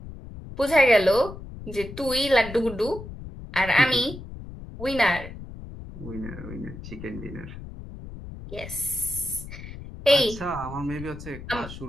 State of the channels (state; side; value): noise; left; rumble, 12 dB below the sound